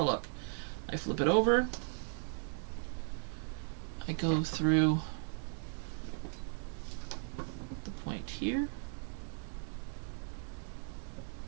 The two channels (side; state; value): left; silent; 53 dB below the other